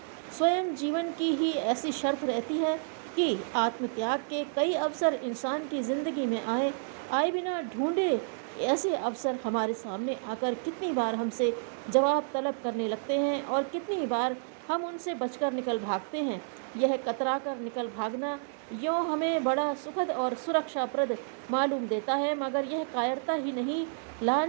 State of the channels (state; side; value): silent; left; digital silence